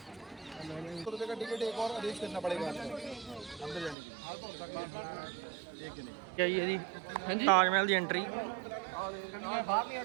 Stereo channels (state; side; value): drops out; left; at 4.0 s